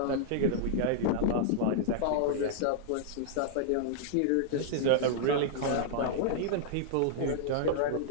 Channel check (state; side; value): different; both; correlation -0.01